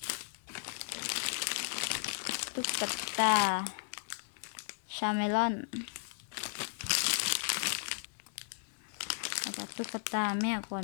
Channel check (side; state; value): right; silent; 54 dB below the other